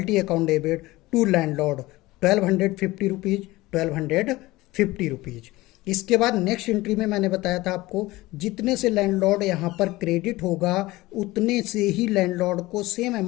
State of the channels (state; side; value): quieter; right; 19.4 dB